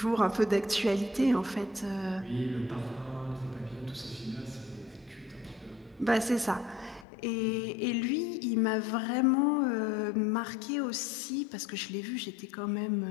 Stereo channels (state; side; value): drops out; right; at 7.1 s